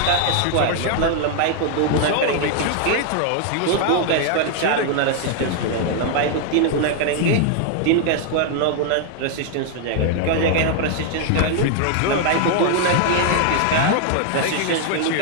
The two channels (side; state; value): both; different; correlation 0.00